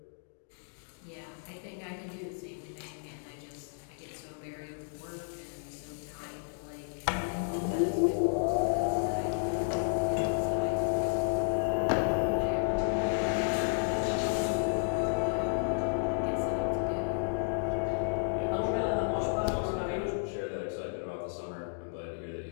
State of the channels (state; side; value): silent; right; digital silence